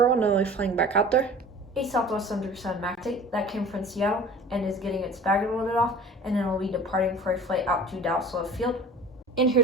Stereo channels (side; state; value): both; normal; correlation 0.42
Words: and will be flying back out there. A Southwest 737 MAX 8 that came from Seattle and is getting its baggage loaded off, and then will be departing for a flight out to Dallas Love Field. And